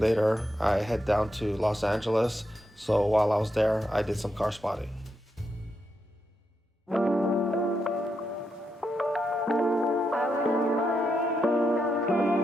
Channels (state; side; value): normal; both; correlation 0.83